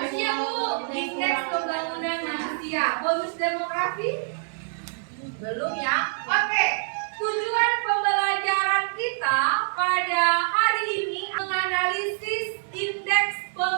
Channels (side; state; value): left; silent; digital silence